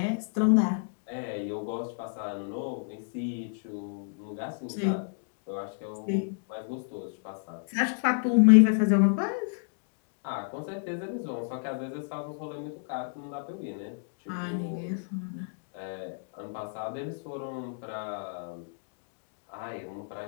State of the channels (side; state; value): right; silent; digital silence